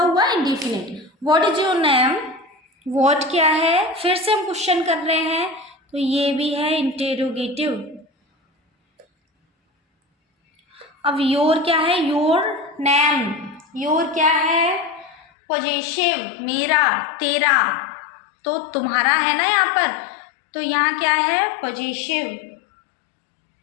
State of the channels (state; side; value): drops out; right; at 15.2 s